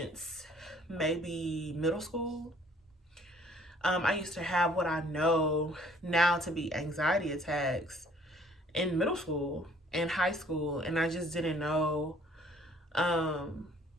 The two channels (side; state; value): both; normal; correlation 0.58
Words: maybe middle school. I used to have what I know now to be anxiety attacks in middle school and high school, and I just didn't know um,